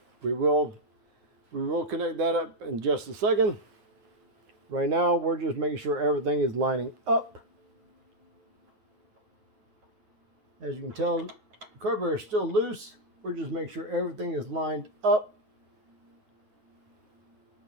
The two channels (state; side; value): late; left; 9.6 ms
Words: We will connect that up in just a second. Right now, we're just making sure everything is lining up. As you can tell, the carburetor is still loose. We're just making sure everything is lined up.